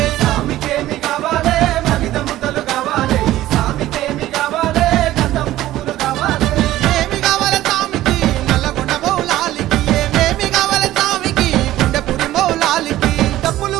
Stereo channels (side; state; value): left; quieter; 14.9 dB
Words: సామికేమి కావాలే మలిద ముద్దలు కావాలే ఈ సామికేమి కావాలే గంధం పువ్వులు కావాలే ఏమి కావాలే సామికి నల్లగొండ మౌలాలికి ఏమేమి కావాలే సామికి గుండెపురి మౌలాలికి